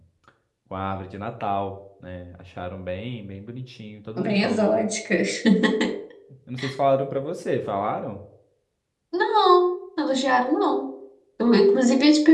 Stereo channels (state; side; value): identical; both; correlation 1.00